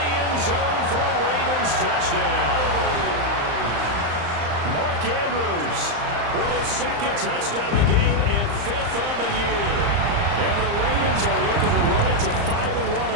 end zone for a Ravens touchdown. Mark Andrews with his 2nd touchdown of the game and 5th on the year. And the Ravens are looking to run it to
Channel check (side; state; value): left; late; 35 ms